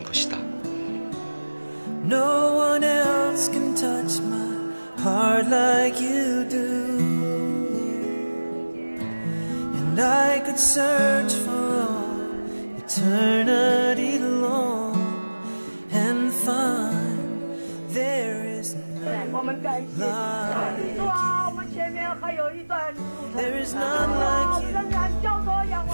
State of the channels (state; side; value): inverted; both; correlation -1.00